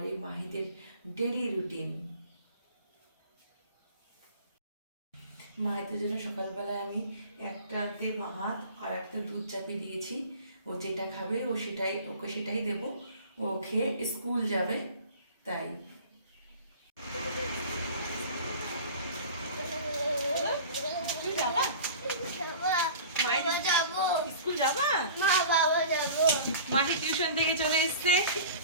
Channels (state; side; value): inverted; both; correlation -0.41